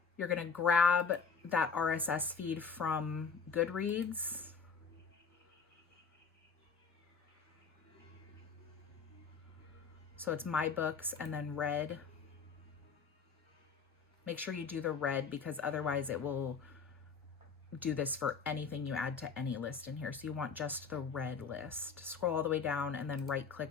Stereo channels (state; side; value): quieter; right; 5.6 dB